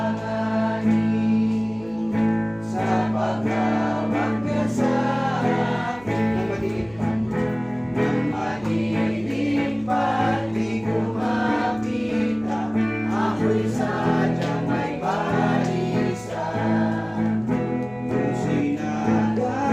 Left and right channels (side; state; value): right; noise; hum, 24 dB below the sound